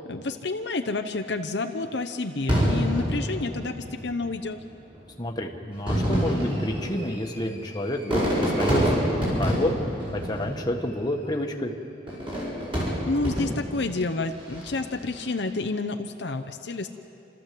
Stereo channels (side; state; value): both; normal; correlation 0.61